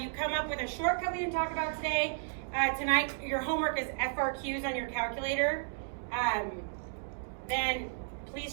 come up with a shortcut we didn't talk about today, tonight your homework is FRQs on your calculator, then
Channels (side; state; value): left; silent; digital silence